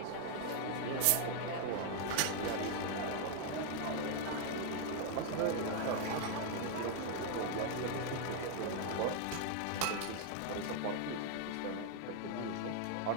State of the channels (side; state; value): both; different; correlation 0.00